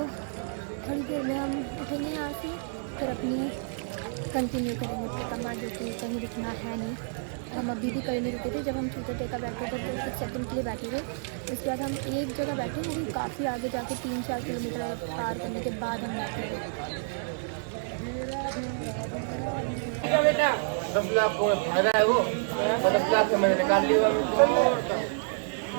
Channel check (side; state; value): left; silent; digital silence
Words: थोड़ी देर में हम उठेंगे यहाँ से, फिर अपनी कंटिन्यू करेंगे परिक्रमा, जो कि कहीं रुकना है नहीं। हम अभी भी कहीं नहीं रुके थे, जब हम चूतर टेका बैठे थे तो कुछ सेकंड के लिए बैठे थे, उसके बाद हम एक जगह बैठे, वो भी काफ़ी आगे जाके 3-4 किलोमीटर पार करने के बाद हम बैठे थे। बेटा 10 लाख को फायदा है, वो 10 लाख से मैंने निकाल लिया।